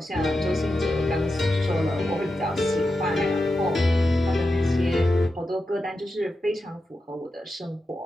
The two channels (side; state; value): both; normal; correlation 0.89